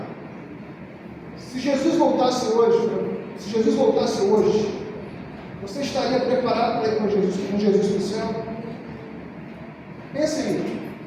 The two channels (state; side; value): identical; both; correlation 1.00